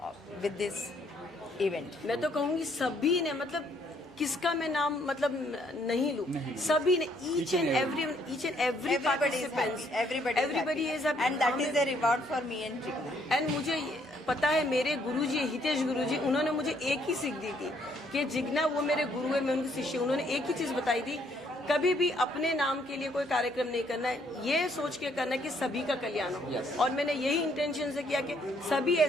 with this event. मैं तो कहूँगी सभी ने, मतलब किसका मैं नाम मतलब नहीं लूँ, सभी ने, each and every participants, everybody is happy, and that is the reward for me and Jigna. And मुझे पता है मेरे गुरुजी हितेश गुरुजी, उन्होंने मुझे एक ही सीख दी थी कि जिग्ना वो मेरे गुरु है, मैं उनकी शिष्य। उन्होंने एक ही चीज बताई थी, कभी भी अपने नाम के लिए कोई कार्यक्रम नहीं करना है, ये सोच के करना है कि सभी का कल्याण हो। और मैंने यही इंटेंशन से किया कि सभी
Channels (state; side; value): normal; both; correlation 0.68